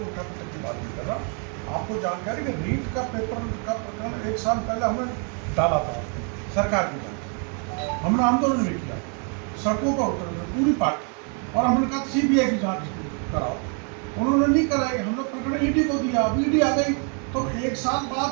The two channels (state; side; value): quieter; left; 39.8 dB